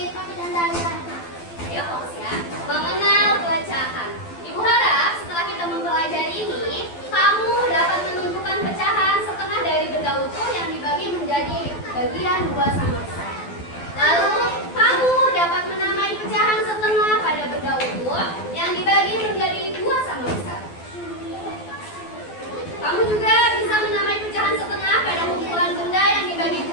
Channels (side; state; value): right; late; 12 ms